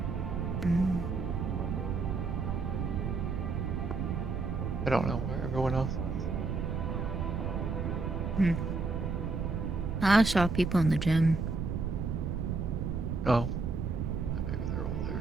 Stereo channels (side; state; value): right; noise; rumble, 1 dB below the sound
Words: I don't know where everyone else is. I saw people in the gym. Oh. Maybe they're all